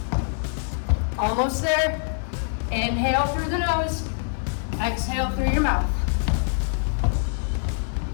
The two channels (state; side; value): silent; right; digital silence